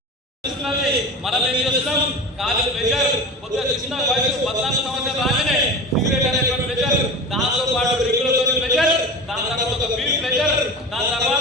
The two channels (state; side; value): normal; both; correlation 0.31